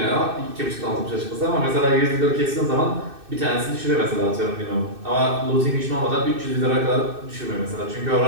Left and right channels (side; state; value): left; late; 2.6 ms